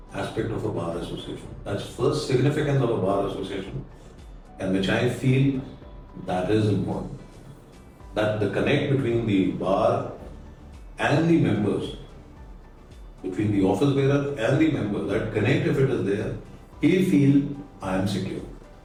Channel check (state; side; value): identical; both; correlation 1.00